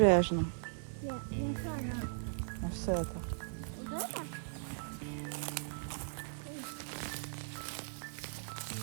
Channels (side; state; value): left; silent; 52 dB below the other